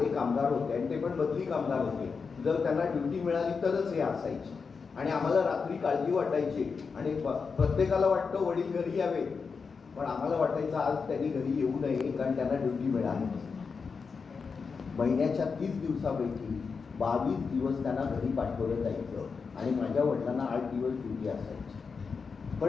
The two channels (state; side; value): quieter; right; 5.2 dB